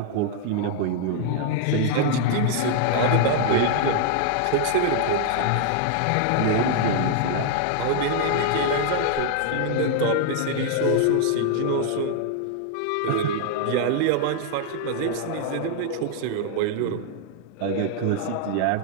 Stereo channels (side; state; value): both; different; correlation 0.00